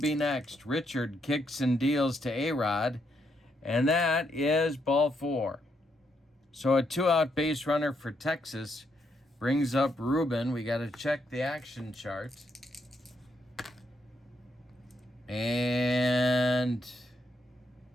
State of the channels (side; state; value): both; normal; correlation 0.77